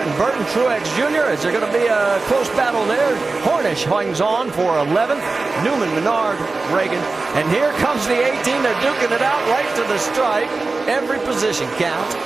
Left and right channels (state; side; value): quieter; left; 3.7 dB